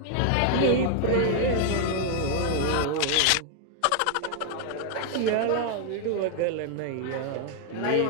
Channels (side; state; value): both; different; correlation 0.00